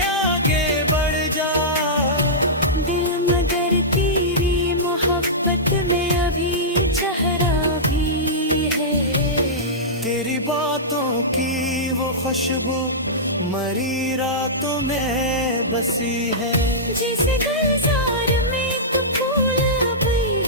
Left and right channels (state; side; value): normal; both; correlation -0.15